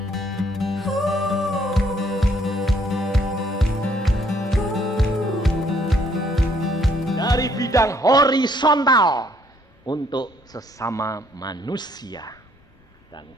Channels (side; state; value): both; normal; correlation 0.66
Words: horizontal untuk sesama manusia. Dan